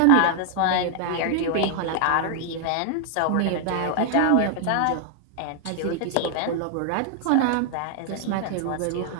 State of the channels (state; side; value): different; both; correlation 0.00